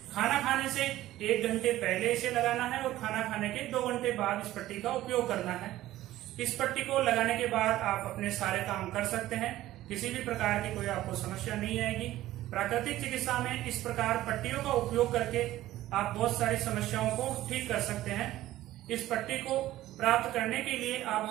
खाना खाने से 1 घंटे पहले इसे लगाना है और खाना खाने के 2 घंटे बाद इस पट्टी का उपयोग करना है। इस पट्टी को लगाने के बाद आप अपने सारे काम कर सकते हैं, किसी भी प्रकार की कोई आपको समस्या नहीं आएगी। प्राकृतिक चिकित्सा में इस प्रकार पट्टियों का उपयोग करके आप बहुत सारी समस्याओं को ठीक कर सकते हैं। इस पट्टी को प्राप्त करने के लिए आप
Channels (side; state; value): left; quieter; 15.0 dB